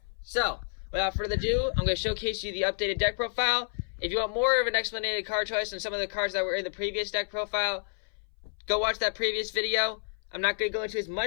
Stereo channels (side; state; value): right; silent; 58 dB below the other